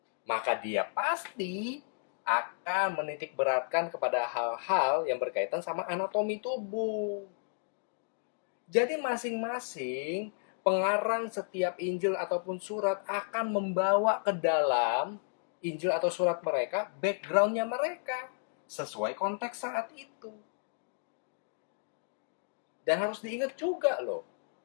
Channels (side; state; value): right; silent; digital silence